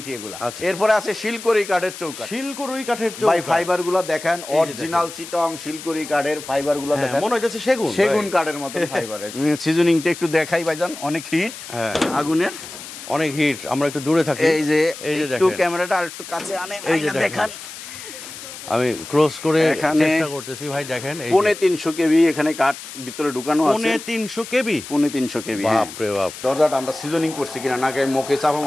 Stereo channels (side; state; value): left; noise; hiss, 13 dB below the sound